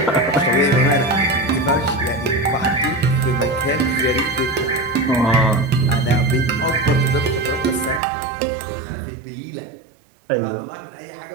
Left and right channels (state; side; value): drops out; left; at 8.0 s